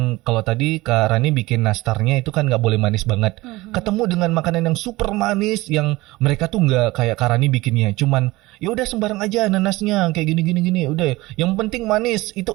kalau tadi Kak Rani bikin nastarnya itu kan nggak boleh manis banget, ketemu dengan makanan yang super manis yang mereka tuh nggak kayak Kak Rani bikinnya, cuman ya udah sembarang aja nanasnya kayak gini udah yang penting manis itu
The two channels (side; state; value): left; quieter; 20.1 dB